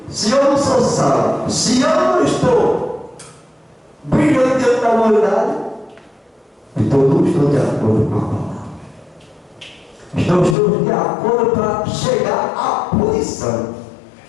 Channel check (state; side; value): drops out; right; at 10.6 s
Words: se eu não sou sal, se eu não estou brilhando diante da humanidade, então não estou de acordo com a palavra. Então estamos de acordo para chegar à punição.